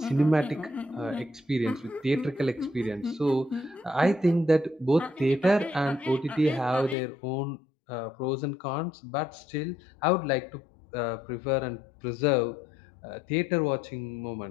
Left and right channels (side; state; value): right; drops out; at 7.0 s